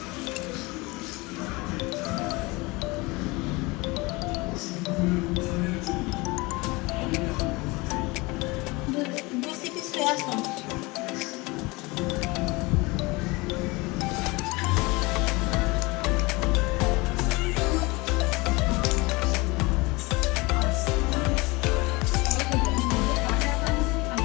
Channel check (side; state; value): right; quieter; 24.2 dB